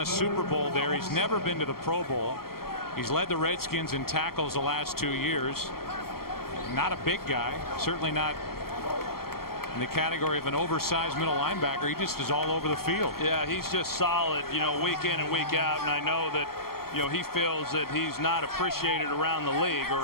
Super Bowl there. He's never been to the Pro Bowl. He's led the Redskins in tackles the last 2 years. Not a big guy, certainly not in the category of an oversized middle linebacker. He just is all over the field. Yeah, he's just solid, you know, week in and week out. And I know that, you know, he feels that he's not appreciated around the league,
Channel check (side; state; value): right; late; 0.93 ms